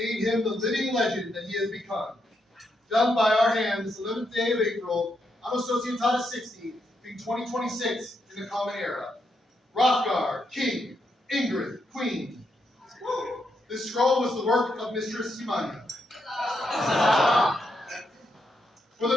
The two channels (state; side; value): normal; both; correlation 0.81